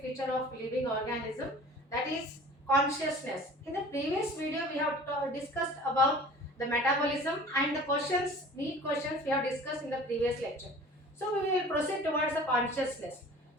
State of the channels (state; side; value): normal; both; correlation 0.44